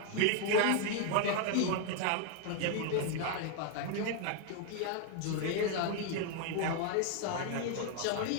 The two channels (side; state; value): both; different; correlation 0.00